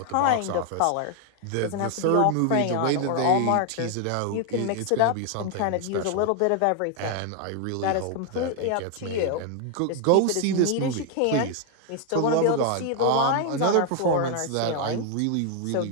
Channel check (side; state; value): both; different; correlation 0.00